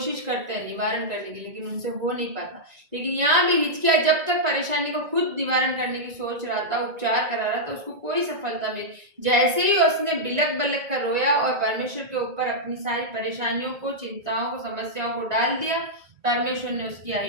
करते हैं निवारण करने की, लेकिन उनसे हो नहीं पाता। लेकिन यहाँ भी हिचकिया, जब तक परेशानी को खुद निवारण करने की सोच रहा था, उपचार करा रहा था, उसको कोई सफलता मिली। जैसे ही उसने बिलक बिलक कर रोया और परमेश्वर के ऊपर अपनी सारी परेशानियों को, चिंताओं को, समस्याओं को डाल दिया, परमेश्वर ने उसकी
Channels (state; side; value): late; left; 1.9 ms